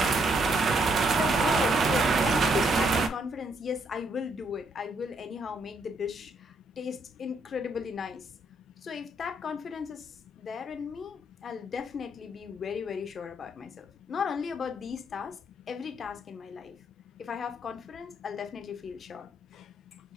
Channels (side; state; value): both; normal; correlation 0.73